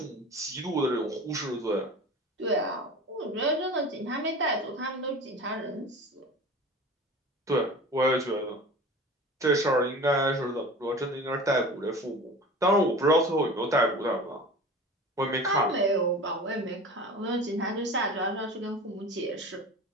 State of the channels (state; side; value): normal; both; correlation 0.37